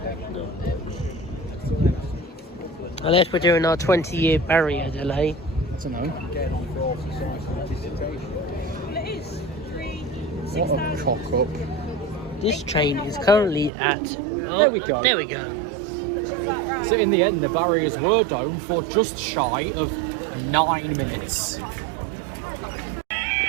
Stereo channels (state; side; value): drops out; left; at 13.7 s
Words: Unless we're doing our 20-year barrier delay. I don't know. Getting on for all society dissertation. It is What a cock up. This train is currently at... Oh, There we go. There we go. So in the end, the barriers were down for just shy of 9 minutes.